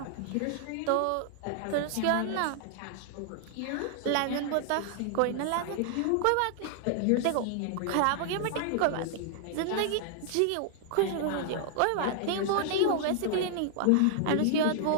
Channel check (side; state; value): both; different; correlation 0.00